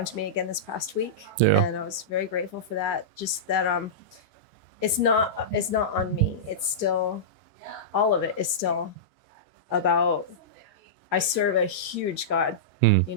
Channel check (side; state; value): both; normal; correlation -0.15